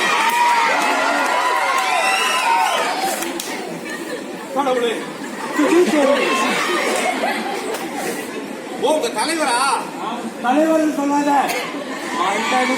கடவுளே உங்க தலைவரா? தலைவர் சொல்லாத, மண்டன்னு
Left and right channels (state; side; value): identical; both; correlation 1.00